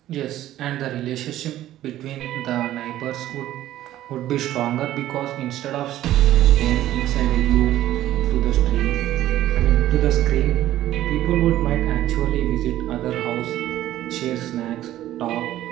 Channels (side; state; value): left; quieter; 13.7 dB